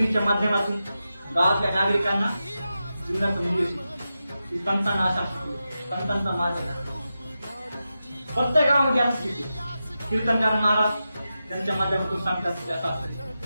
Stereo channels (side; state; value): both; inverted; correlation -0.91